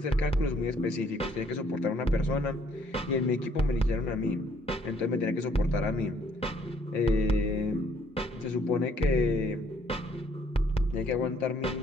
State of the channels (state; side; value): normal; both; correlation 0.64